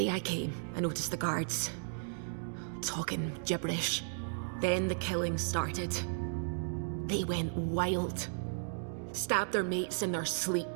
I came, I noticed the guards talking gibberish. Then the killing started. They went wild. Stabbed their mates in their sleep.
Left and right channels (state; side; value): silent; left; digital silence